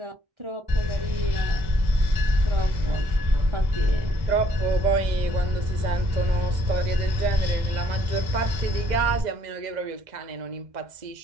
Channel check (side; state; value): left; late; 2.0 ms